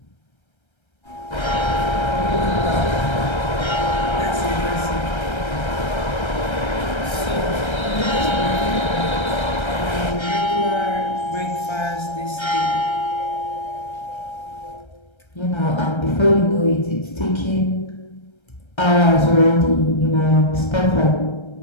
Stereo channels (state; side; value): late; right; 1.3 ms